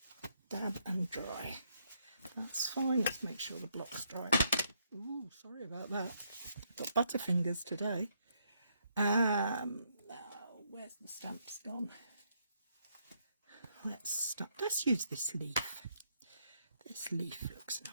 dab and dry. That's fine. Let's make sure the block's dry. Ooh, sorry about that. Got butterfingers today. Now, where's the stamps gone? Let's use this leaf. This leaf looks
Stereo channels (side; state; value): both; inverted; correlation -0.73